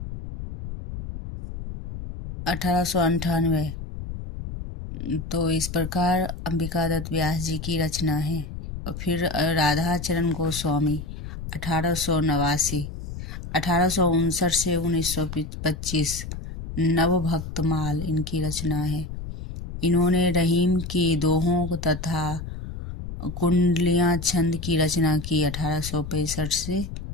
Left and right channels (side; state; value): left; noise; rumble, 8 dB below the sound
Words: 1898। तो इस प्रकार अंबिका दत्त व्यास जी की रचना है। और फिर राधा चरण गोस्वामी 1889, 1859 से 1925, नवभक्तमाल इनकी रचना है। इन्होंने रहीम की दोहों तथा कुंडलियां छंद की रचना की 1865 से